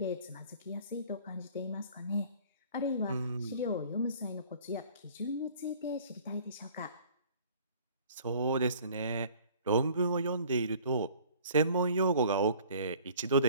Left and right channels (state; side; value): inverted; both; correlation -0.51